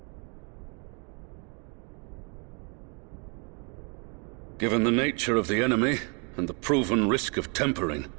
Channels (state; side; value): quieter; left; 35.4 dB